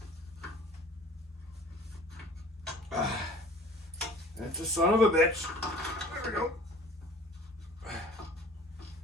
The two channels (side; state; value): both; normal; correlation 0.47